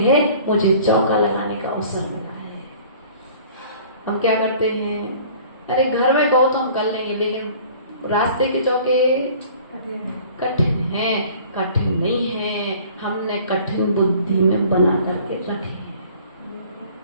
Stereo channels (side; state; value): both; inverted; correlation -0.49